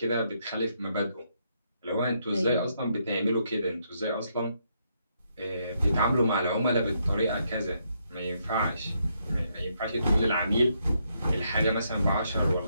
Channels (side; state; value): both; inverted; correlation -0.76